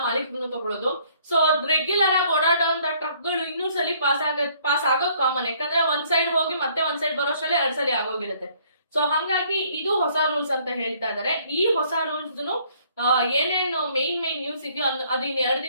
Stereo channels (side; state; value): both; inverted; correlation -0.62